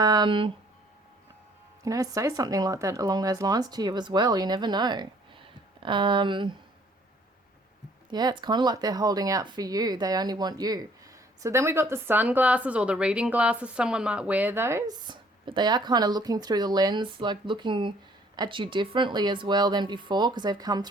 know, say something like that along those lines to you as well. You never know. Yeah, it's kind of like they're holding out for you. They only want you. So then we got the sunglasses or the reading glasses. Someone might wear those, but they are kind of looking through the lens, like looking at you differently as well than before, because they've come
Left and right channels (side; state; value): both; normal; correlation 0.60